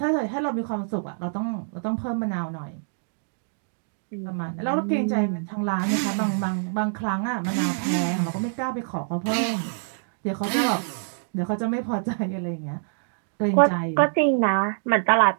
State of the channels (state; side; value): silent; left; digital silence